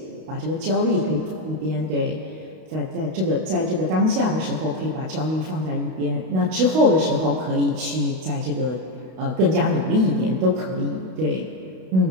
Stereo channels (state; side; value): late; left; 32 ms